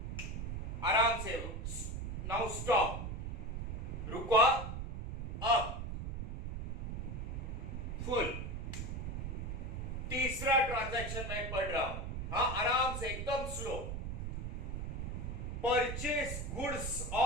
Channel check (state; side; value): noise; right; rumble, 4 dB below the sound